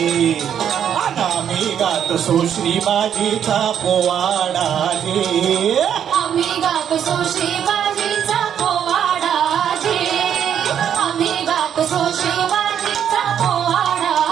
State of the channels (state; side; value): quieter; left; 9.0 dB